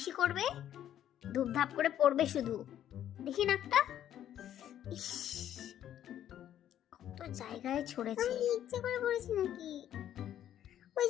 করবে, ধূপধাপ করে পড়বে শুধু। দেখি নাকটা। ইস, কত জায়গায় ছড়েছে। আমি ইচ্ছে করে পড়েছি নাকি? ওই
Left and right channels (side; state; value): right; quieter; 11.0 dB